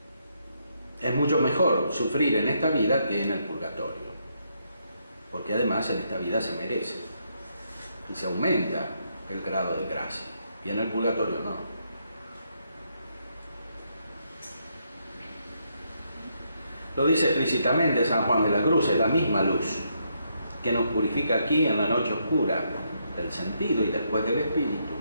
Es mucho mejor sufrir en esta vida que en el purgatorio, porque además en esta vida se merece y se aumenta el grado de gracia, y en el purgatorio no. Lo dice explícitamente San Juan de la Cruz: es la misma luz que nos purifica aquí en la noche oscura del sentido y después del espíritu,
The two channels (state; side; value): inverted; both; correlation -0.77